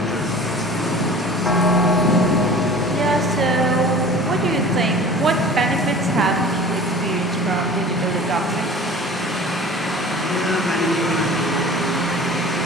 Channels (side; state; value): both; normal; correlation 0.42